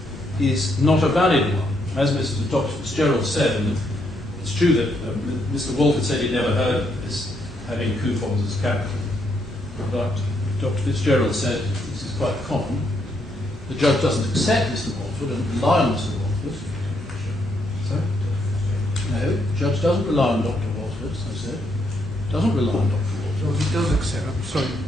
is not a valid one. As Dr. Fitzgerald said, and it's true that Mr. Walford said he'd never heard of this, having coupons as capital. But Dr. Fitzgerald said this is quite common. The judge doesn't accept Mr. Walford and rely on Mr. Walford. Sorry? No, the judge doesn't rely on Dr. Walford, as I said. Doesn't rely on Dr. Walford. Well, he does accept, I'm sorry,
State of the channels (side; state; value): both; normal; correlation 0.75